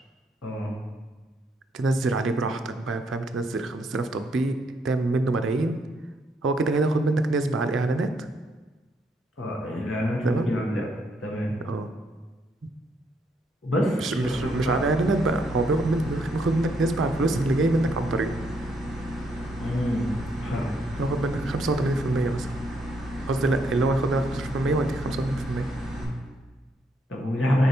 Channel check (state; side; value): normal; both; correlation 0.74